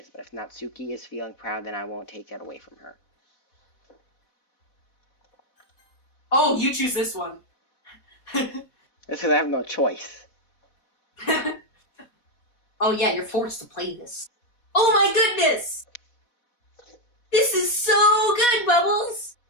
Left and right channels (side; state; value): right; late; 4.1 ms